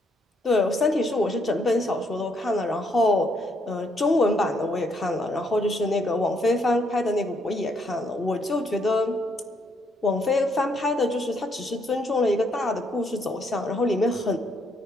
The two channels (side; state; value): both; normal; correlation 0.72